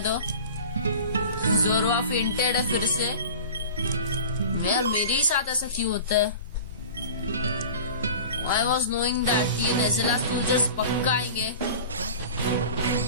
जोरवा फेंटेड है फिर से। यार मेरे ही साथ ऐसा क्यों होता है? I was knowing that ये नेज़ेला सोल्जर्स पक्का आएंगे।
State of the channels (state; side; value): inverted; both; correlation -0.38